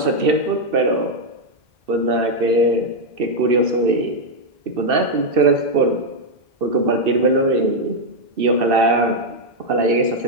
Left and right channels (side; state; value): left; late; 2.7 ms